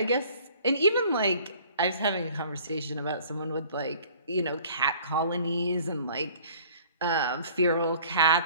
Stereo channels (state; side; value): inverted; both; correlation -0.52